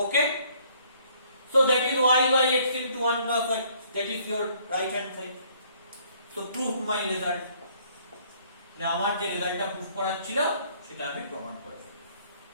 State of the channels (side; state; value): both; inverted; correlation -0.62